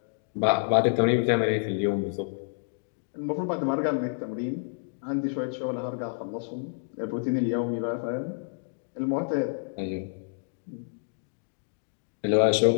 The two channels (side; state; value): right; silent; digital silence